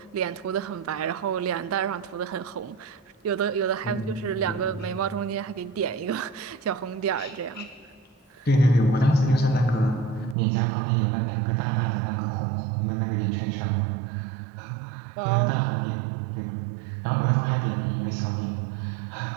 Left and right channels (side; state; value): left; drops out; at 10.4 s